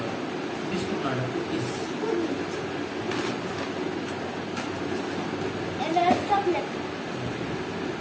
বিস্কুট না কুকিজ।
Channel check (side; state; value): both; identical; correlation 1.00